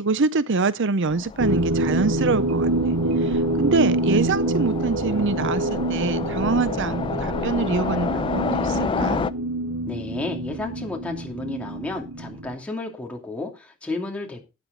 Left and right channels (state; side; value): normal; both; correlation 0.19